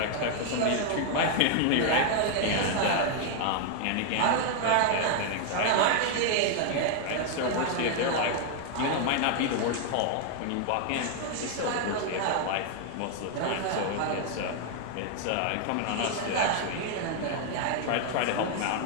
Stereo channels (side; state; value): both; different; correlation 0.00